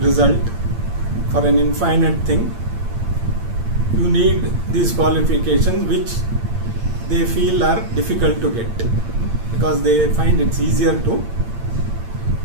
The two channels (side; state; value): left; late; 8.7 ms